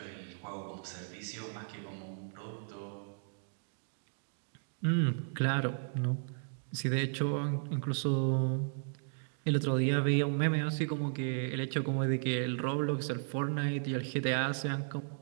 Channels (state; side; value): silent; left; digital silence